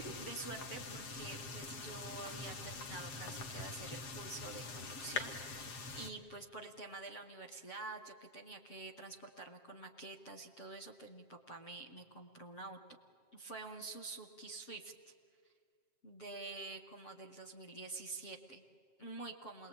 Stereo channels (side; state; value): right; late; 7.5 ms